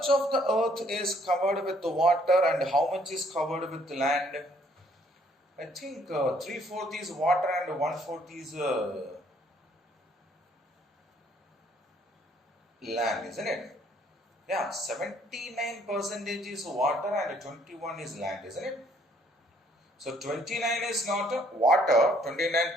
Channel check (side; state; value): both; normal; correlation 0.64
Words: of the Earth is covered with the water and how much is covered with the land? I think 3/4 is water and 1/4 is land, isn't it? Yeah, 79% is water and 21 is land, isn't it? So 29 is not water,